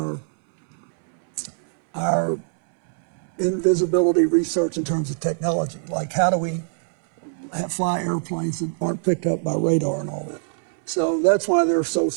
our invisibility research in terms of technology. Like, how do we fly airplanes that aren't picked up by radar and all that? So that's why they're so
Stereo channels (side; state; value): left; silent; 64 dB below the other